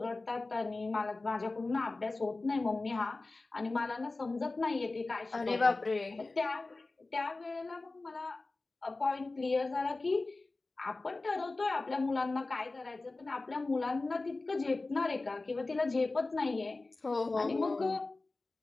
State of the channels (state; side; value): quieter; right; 3.3 dB